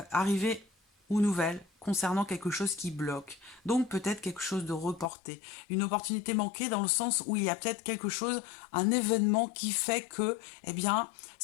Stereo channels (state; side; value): drops out; right; at 5.1 s